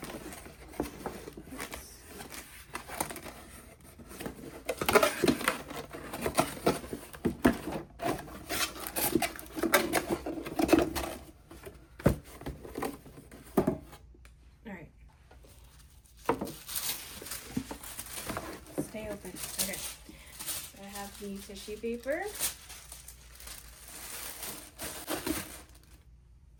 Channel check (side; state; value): both; identical; correlation 1.00